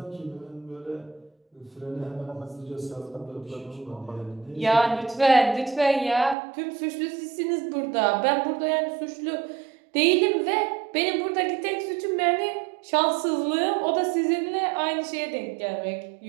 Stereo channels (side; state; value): left; drops out; at 6.4 s